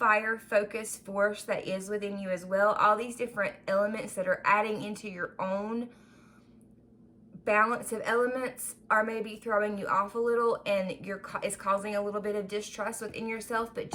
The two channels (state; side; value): identical; both; correlation 1.00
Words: focus force that is within you as well. All these different elements that are adding into your own balance of elements are maybe throwing you off a little, and it's causing a little bit of distrust within yourself. But